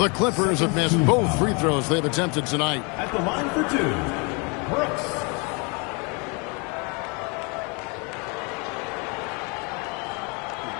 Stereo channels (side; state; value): right; quieter; 31.9 dB